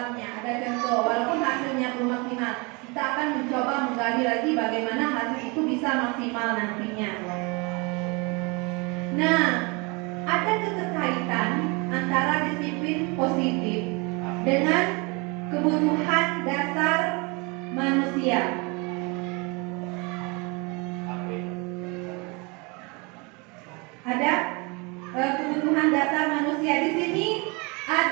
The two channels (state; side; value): quieter; left; 29.2 dB